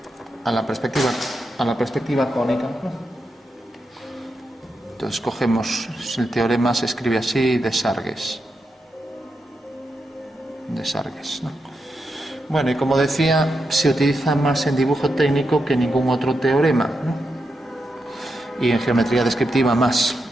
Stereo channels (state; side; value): normal; both; correlation 0.86